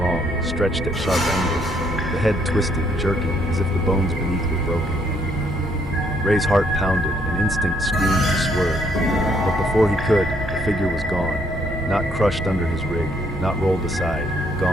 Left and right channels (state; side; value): normal; both; correlation 0.70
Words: stretched at sharp angles. The head twisted, jerking, as if the bones beneath were broken. Ray's heart pounded, and instinct screamed to swerve. But before he could, the figure was gone. Not crushed under his rig, not rolled aside,